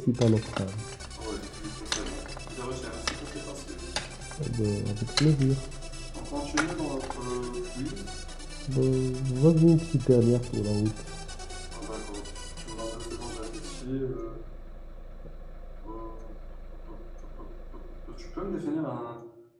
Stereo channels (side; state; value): both; identical; correlation 1.00